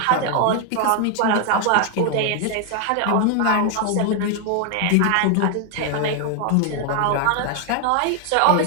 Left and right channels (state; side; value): different; both; correlation 0.00